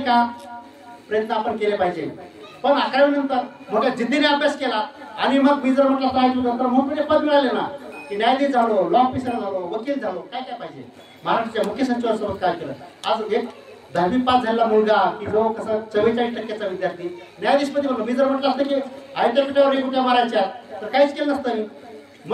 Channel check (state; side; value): identical; both; correlation 1.00